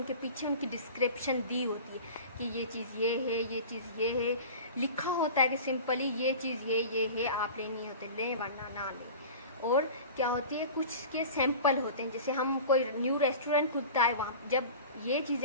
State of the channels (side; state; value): both; inverted; correlation -0.36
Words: पीछे उनकी डिस्क्रिप्शन दी होती है कि ये चीज़ ये है, ये चीज़ ये है, लिखा होता है कि सिंपली ये चीज़ ये है, आप लेनी होती है लें वरना ना लें। और क्या होती है, कुछ के सैंपल होते हैं, जैसे हम कोई न्यू रेस्टोरेंट खुलता है, वहाँ जब ये